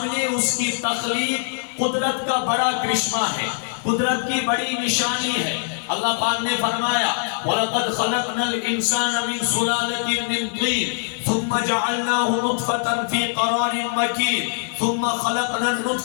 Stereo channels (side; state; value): right; silent; digital silence